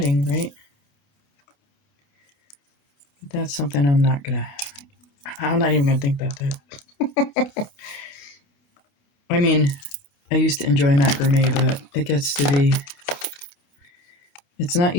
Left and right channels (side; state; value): right; late; 29 ms